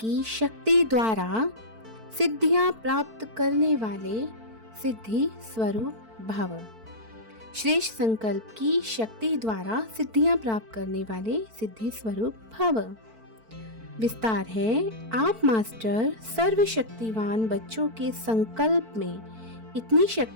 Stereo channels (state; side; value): late; left; 4.5 ms